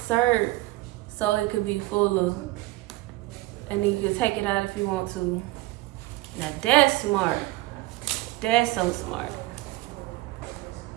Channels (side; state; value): left; quieter; 19.3 dB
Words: so it could be fuller. And then you can take it out if you want to. Now that's smart. That's so smart.